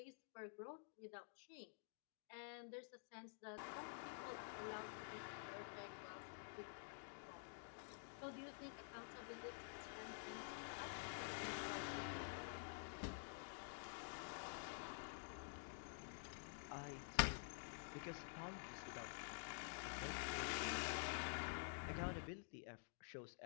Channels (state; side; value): silent; right; digital silence